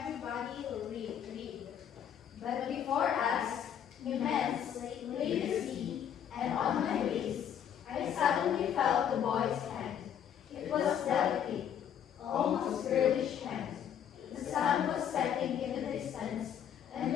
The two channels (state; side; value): quieter; right; 9.1 dB